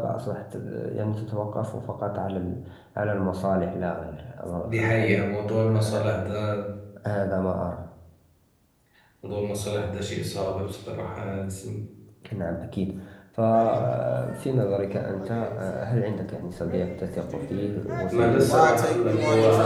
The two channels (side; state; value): both; identical; correlation 1.00